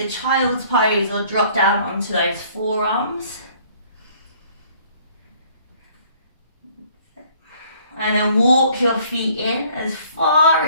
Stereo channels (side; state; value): both; inverted; correlation -0.58